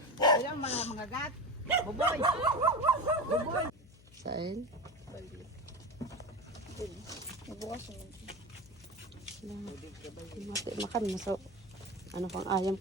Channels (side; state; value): left; noise; hum, 23 dB below the sound